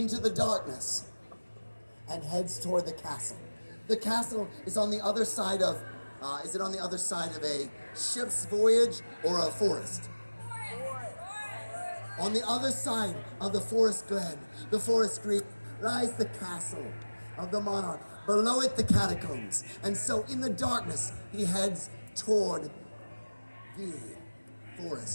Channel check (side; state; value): both; inverted; correlation -1.00